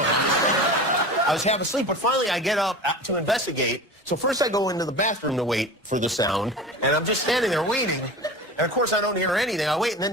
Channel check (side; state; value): both; normal; correlation 0.33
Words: was half asleep, but finally I get up to investigate. So first I go into the bathroom to wait for the sound, and I'm just standing there waiting. And, of course, I don't hear anything. I wait, and